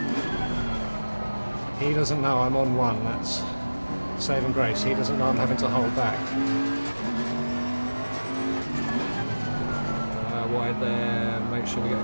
He doesn't know I'm on one, that's saving grace. He doesn't know I'm having to hold back. Wide there, make sure we get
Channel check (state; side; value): inverted; both; correlation -1.00